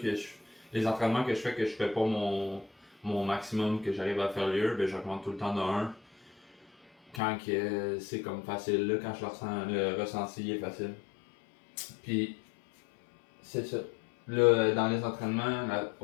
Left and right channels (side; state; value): right; drops out; at 7.2 s